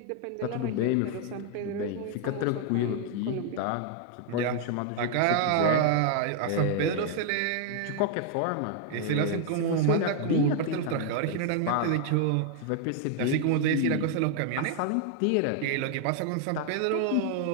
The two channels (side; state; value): both; different; correlation 0.00